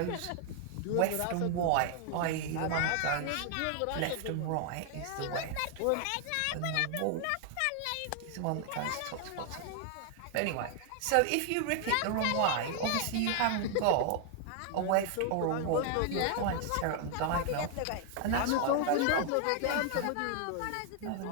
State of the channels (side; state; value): both; different; correlation 0.00